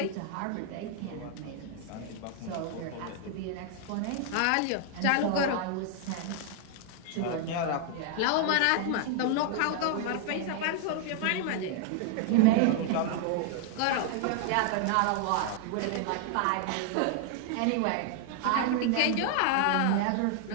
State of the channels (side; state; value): both; different; correlation 0.00